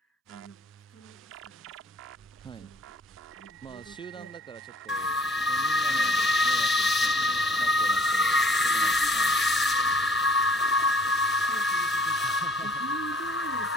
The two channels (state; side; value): normal; both; correlation 0.55